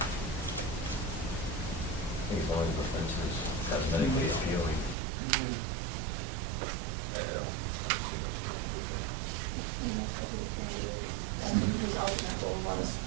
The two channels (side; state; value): left; drops out; at 5.0 s